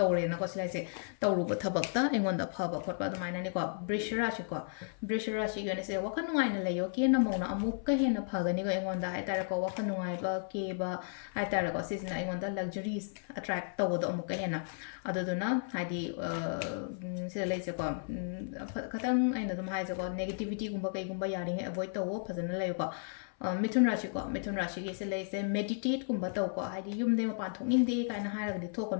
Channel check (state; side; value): silent; right; 55 dB below the other